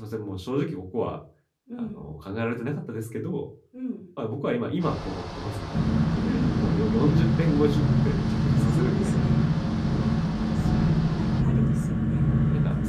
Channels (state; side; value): identical; both; correlation 1.00